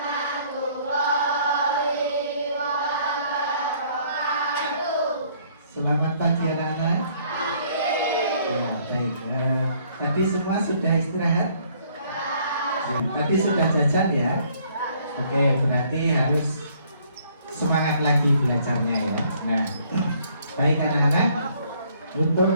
Selamat pagi anak-anak. Ya, baik. Tadi semua sudah istirahat? Tadi sudah jajan ya? Oke, berarti harus semangat lagi belajarnya ya. Nah, baik anak-anak,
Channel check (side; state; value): both; inverted; correlation -0.63